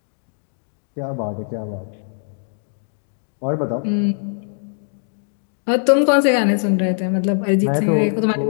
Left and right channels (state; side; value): silent; right; digital silence